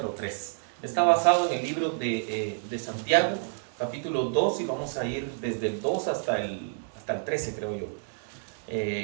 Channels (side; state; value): left; silent; digital silence